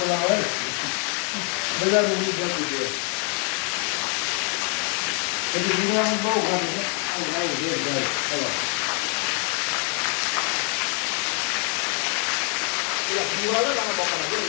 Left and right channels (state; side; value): quieter; right; 39.9 dB